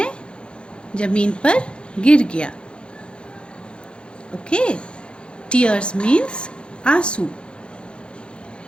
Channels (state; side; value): late; right; 0.055 ms